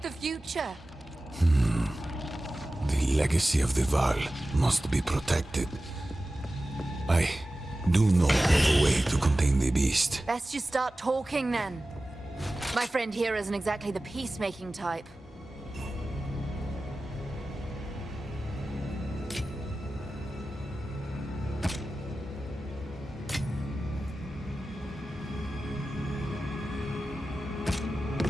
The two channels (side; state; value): both; normal; correlation 0.95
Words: future. The legacy of the Val must be protected. I do know of a way to contain the beast. Best you start talking then. My friend here isn't exactly the peacemaking type.